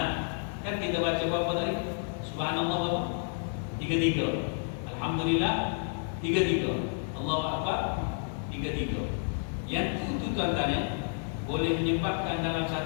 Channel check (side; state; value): right; silent; 58 dB below the other